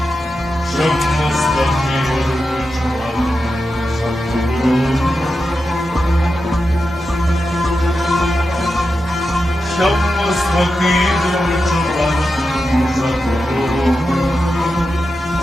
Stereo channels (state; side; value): normal; both; correlation 0.89